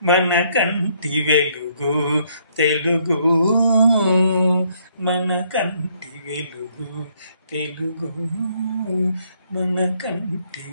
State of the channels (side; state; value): both; inverted; correlation -0.68